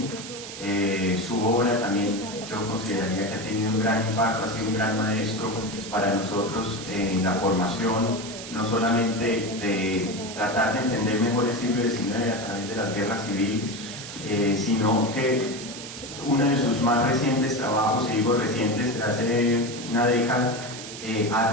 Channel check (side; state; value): right; noise; hiss, 11 dB below the sound